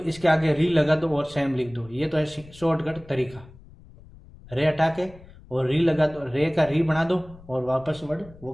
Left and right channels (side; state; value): left; noise; rumble, 21 dB below the sound